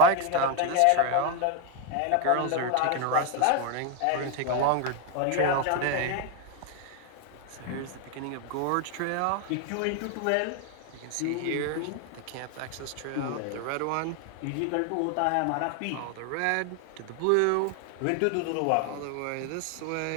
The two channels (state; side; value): different; both; correlation 0.01